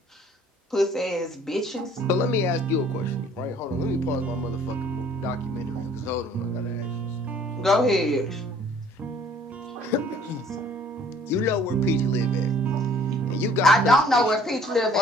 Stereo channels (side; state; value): both; normal; correlation 0.56